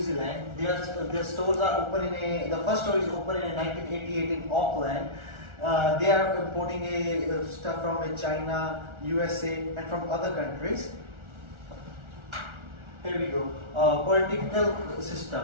Zealand. Their stores are open the first store is open in 1988 in Auckland. They are importing stuff from China, USA and from other countries. Here we go. Political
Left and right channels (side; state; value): left; late; 1.4 ms